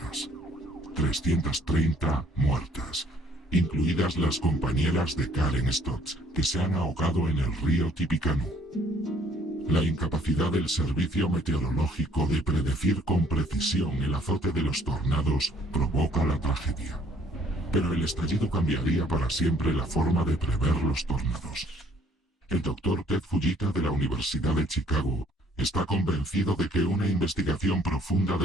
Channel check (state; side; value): normal; both; correlation 0.62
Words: 330 muertas, incluidas las compañeras de Karen Stotts, que se han ahogado en el río Tippecanoe. La incapacidad del servicio meteorológico de predecir con precisión el azote de los tornados provoca la tragedia. Pero el estallido cambiaría para siempre la forma de prever los tornados. El doctor Ted Fujita de la Universidad de Chicago está convencido de que una investigación profunda